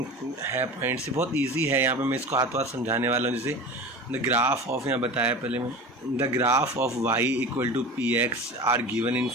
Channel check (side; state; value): both; normal; correlation 0.33